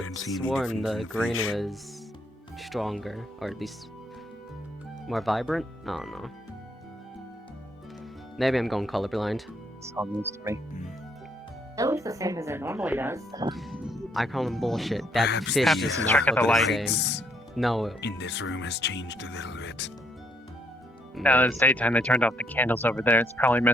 don't see have any sworn difference the in the green fish. was stronger, or at least more vibrant. I don't know. Maybe I'm going colorblind. Sounds news to me. It looks the same as it normally does. I call them bullshit. That Perhaps fish Perhaps does it's not trick of look the the light. same. lights No. in this room has changed a little bit. Now that it's daytime, they turned off the candles over there. It's probably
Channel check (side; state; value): both; normal; correlation 0.70